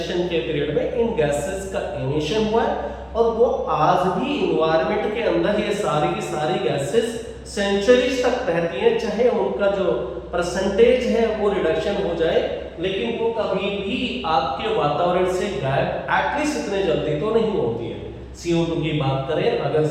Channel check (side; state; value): both; identical; correlation 1.00